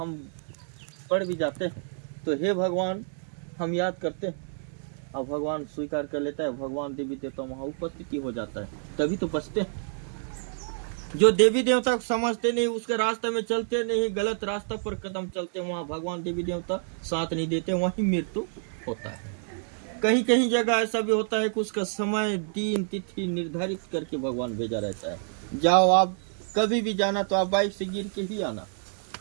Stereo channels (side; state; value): left; silent; 59 dB below the other